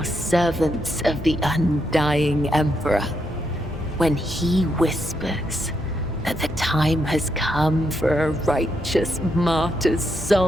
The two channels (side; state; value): both; normal; correlation 0.79